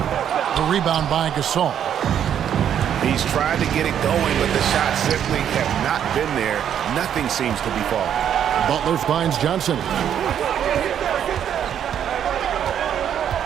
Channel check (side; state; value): left; quieter; 9.3 dB